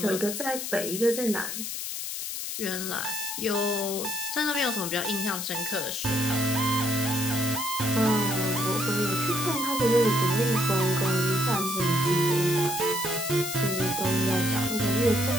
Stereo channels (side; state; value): left; noise; hiss, 5 dB below the sound